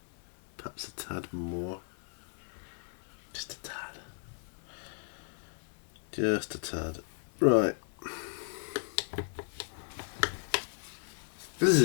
Perhaps a tad more. Just a tad. Just a tad. Right. This is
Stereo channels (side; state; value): right; silent; digital silence